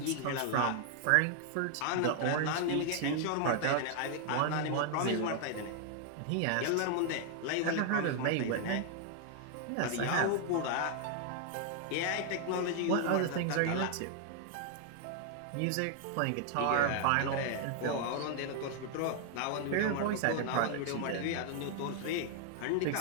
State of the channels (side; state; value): both; different; correlation 0.00